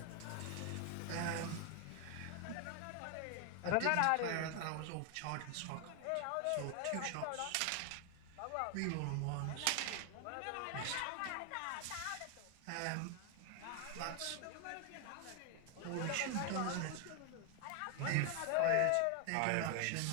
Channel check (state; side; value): different; both; correlation 0.00